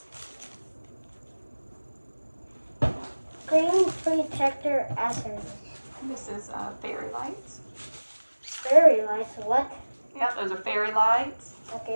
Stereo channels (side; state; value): both; inverted; correlation -1.00